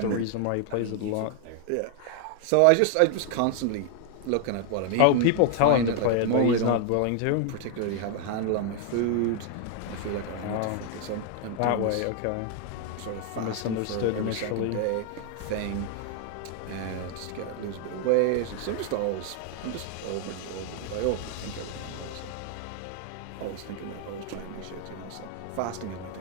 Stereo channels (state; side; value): different; both; correlation 0.00